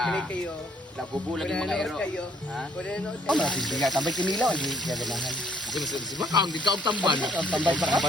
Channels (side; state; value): both; normal; correlation 0.64